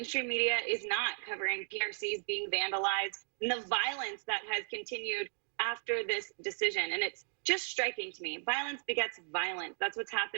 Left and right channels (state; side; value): silent; left; 54 dB below the other